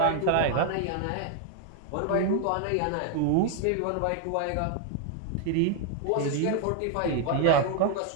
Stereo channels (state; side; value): different; both; correlation 0.00